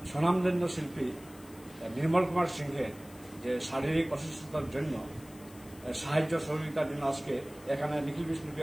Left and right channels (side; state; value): left; noise; hiss, 22 dB below the sound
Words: স্বনামধন্য শিল্পী নির্মল কুমার সিংহের যে শারীরিক অসুস্থতার জন্য সাহায্য সহযোগিতার জন্য আজকে এখানে নিখিল